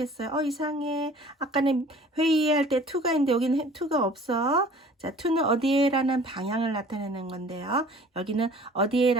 이상해. 아까는 회의할 때 to가 있는데 여기는 to가 없어. 자, to는 어디에라는 방향을 나타내는 건데요. 여기는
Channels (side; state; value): both; normal; correlation 0.49